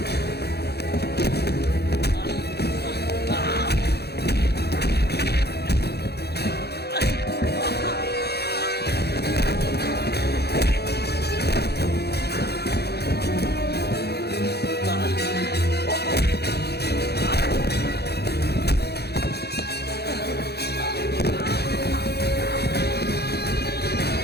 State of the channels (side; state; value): right; late; 0.47 ms